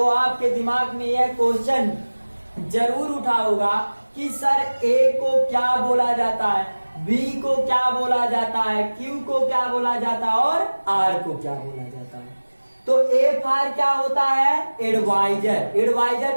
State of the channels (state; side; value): inverted; both; correlation -1.00